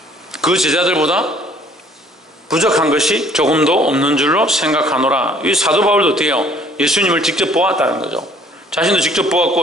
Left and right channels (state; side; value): normal; both; correlation 0.58